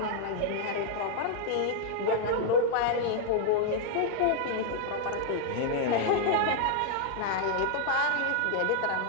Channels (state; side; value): different; both; correlation -0.01